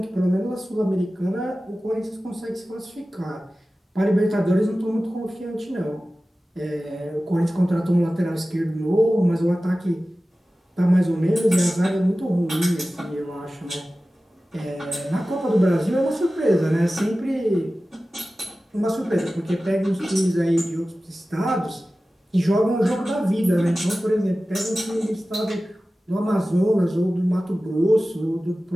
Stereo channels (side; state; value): both; normal; correlation 0.96